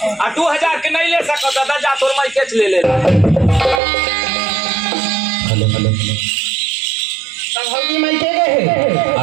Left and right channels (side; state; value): left; drops out; at 3.8 s